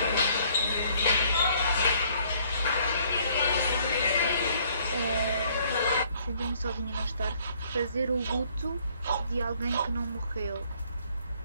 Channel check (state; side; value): inverted; both; correlation -0.63